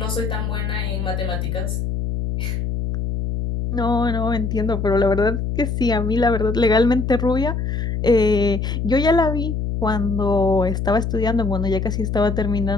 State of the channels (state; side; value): noise; left; hum, 2 dB below the sound